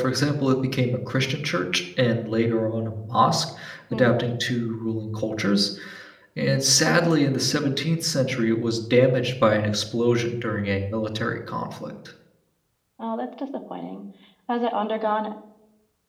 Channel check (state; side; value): identical; both; correlation 1.00